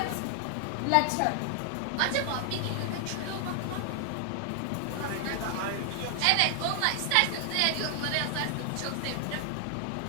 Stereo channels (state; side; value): different; both; correlation 0.00